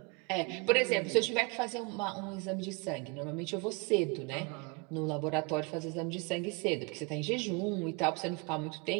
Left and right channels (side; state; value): left; quieter; 30.2 dB